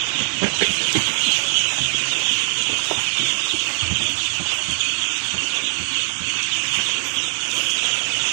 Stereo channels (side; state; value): left; silent; digital silence